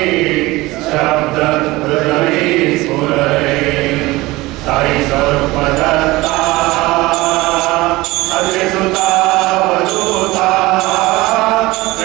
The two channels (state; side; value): quieter; left; 20.2 dB